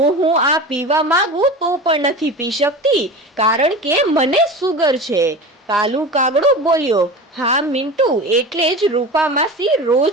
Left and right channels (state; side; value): normal; both; correlation 0.31